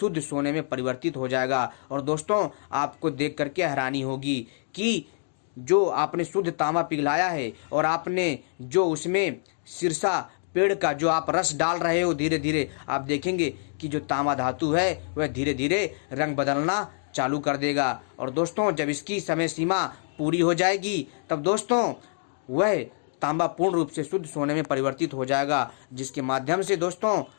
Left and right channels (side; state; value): right; silent; digital silence